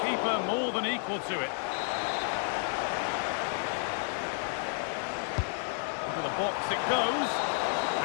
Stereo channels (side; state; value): right; silent; 57 dB below the other